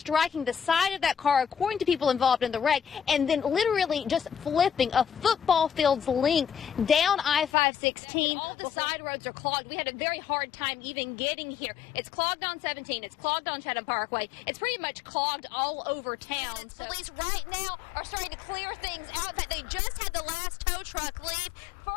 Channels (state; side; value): drops out; right; at 7.5 s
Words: the side of that car, according to people involved in the wreck, and then literally just flipping a football field's length down I-516. All the side roads are clogged. We had a very hard time even getting here. It's clogged on 17. It's clogged on Chatham Parkway. It's pretty much clogged all over town. So.